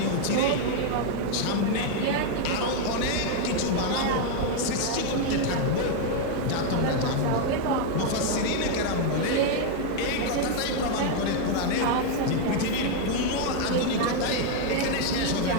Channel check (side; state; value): both; different; correlation 0.00